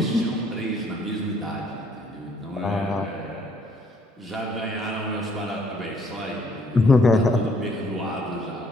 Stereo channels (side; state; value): both; normal; correlation 0.64